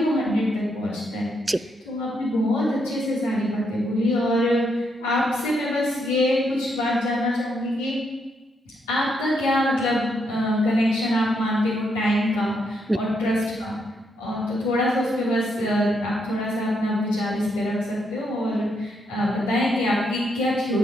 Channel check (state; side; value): normal; both; correlation 0.77